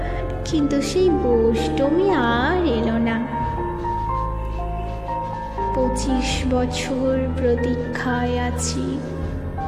কিন্তু সেই অষ্টমী আর এলো না। 25 বছর প্রতীক্ষায় আছি।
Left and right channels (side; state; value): both; identical; correlation 1.00